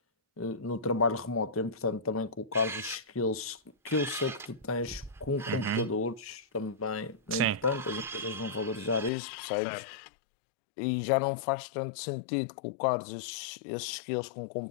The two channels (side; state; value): right; drops out; at 9.1 s